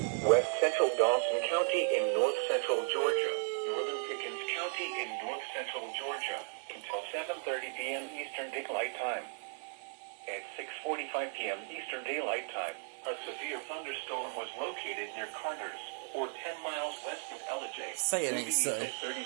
west-central Dawson County in north-central Georgia, northern Pickens County in north-central Georgia, until 7:30 p.m. Eastern Daylight Time. At 6:45 p.m. Eastern Daylight Time, a severe thunderstorm was located near Carter's, or 10 miles west of LJ. Say it ain't so.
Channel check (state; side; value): silent; left; 54 dB below the other